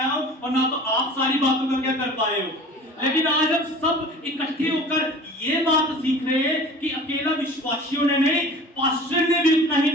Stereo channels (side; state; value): both; normal; correlation 0.42